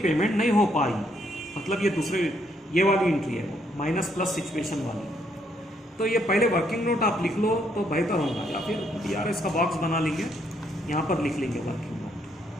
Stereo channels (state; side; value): normal; both; correlation 0.72